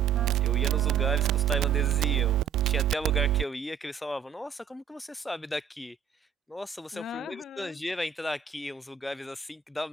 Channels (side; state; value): left; quieter; 7.4 dB